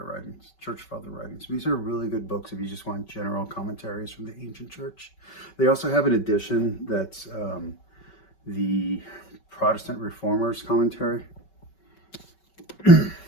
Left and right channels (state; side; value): late; right; 5.3 ms